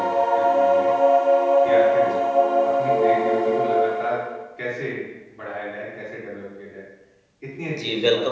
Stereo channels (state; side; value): identical; both; correlation 1.00